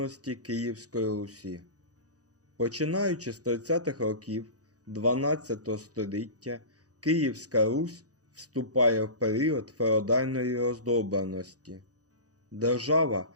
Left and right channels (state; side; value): late; left; 0.67 ms